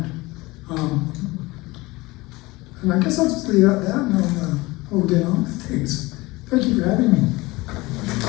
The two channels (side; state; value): right; quieter; 21.6 dB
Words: And I guess I'll just leave it at that, and we'll get on with things. Thank you for having me.